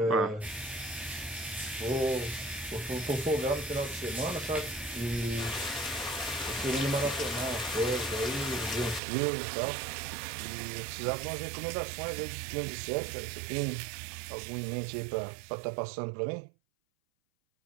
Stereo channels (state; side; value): drops out; left; at 9.0 s